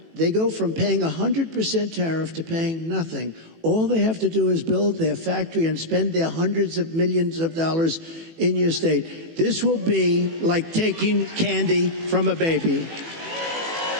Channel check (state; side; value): late; left; 18 ms